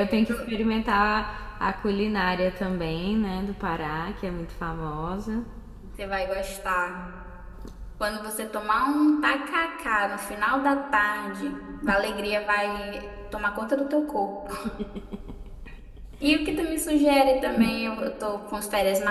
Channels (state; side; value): identical; both; correlation 1.00